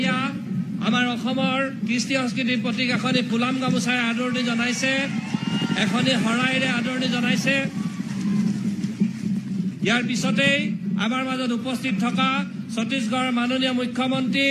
আমাৰ অসমৰ কৃষ্টি সংস্কৃতিৰ প্ৰতীক এখনি ফুলাম গামোচাৰে আদৰণি জনাইছে, এখনি শৰাইৰে আদৰণি জনাইছে। ইয়াৰ পিছতেই আমাৰ মাজত উপস্থিত থকা ছত্তীশগড়ৰ মাননীয় মুখ্যমন্ত্ৰী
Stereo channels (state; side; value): identical; both; correlation 1.00